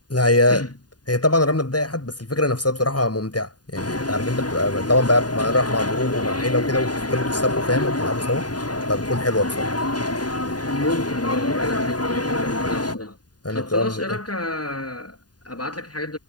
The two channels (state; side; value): late; right; 0.69 ms